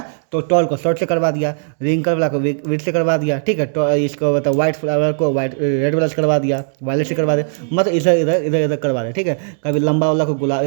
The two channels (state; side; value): silent; left; digital silence